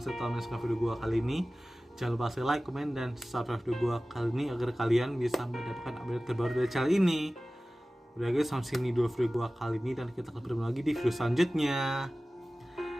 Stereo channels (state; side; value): normal; both; correlation 0.97